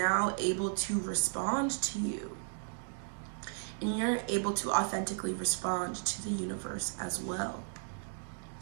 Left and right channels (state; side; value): silent; left; 55 dB below the other